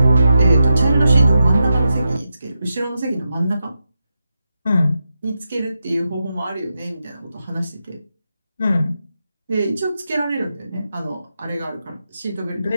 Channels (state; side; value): inverted; both; correlation -0.89